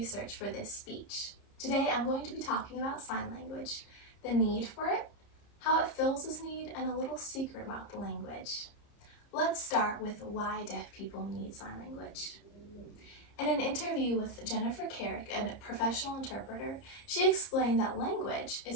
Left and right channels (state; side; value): late; right; 30 ms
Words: for this speech. Today I'm going to be talking about sign language, the need for it, how it fills this need, and a little secret about the language. Let's start with why deaf people need sign language. In an interview with Jennifer Carrick, a professional interpreter, she explained that language